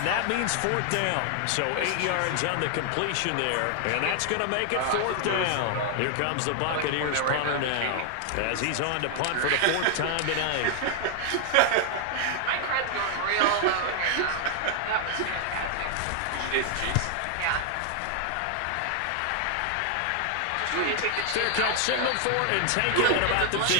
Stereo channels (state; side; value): different; both; correlation 0.00